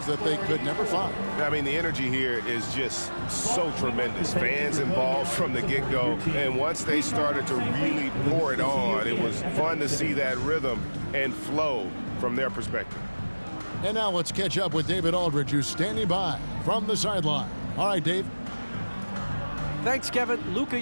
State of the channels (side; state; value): both; inverted; correlation -1.00